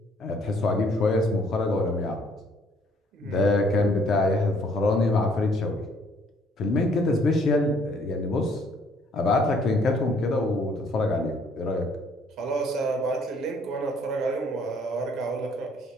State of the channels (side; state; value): both; normal; correlation 0.63